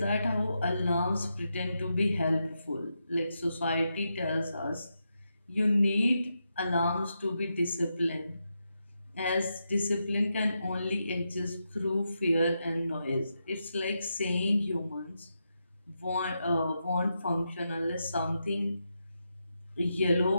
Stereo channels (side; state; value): both; inverted; correlation -0.85